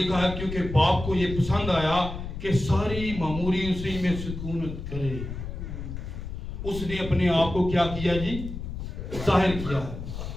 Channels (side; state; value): left; noise; rumble, 7 dB below the sound